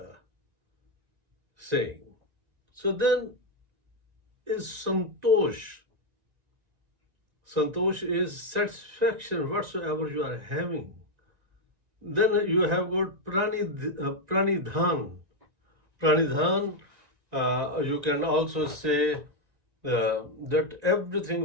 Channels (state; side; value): late; left; 1.9 ms